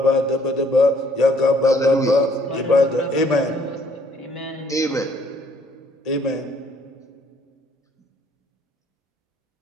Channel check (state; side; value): normal; both; correlation 0.63